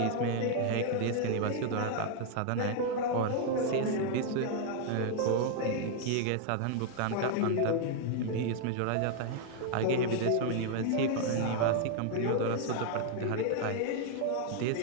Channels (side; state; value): both; different; correlation 0.00